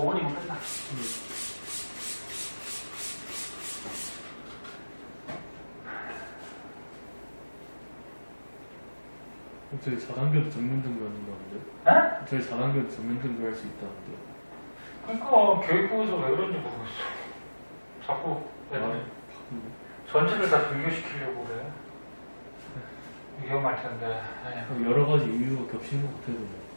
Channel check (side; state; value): both; inverted; correlation -1.00